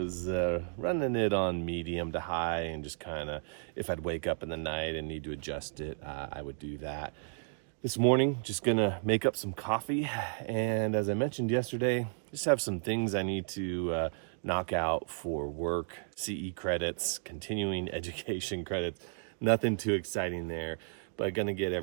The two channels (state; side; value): silent; left; digital silence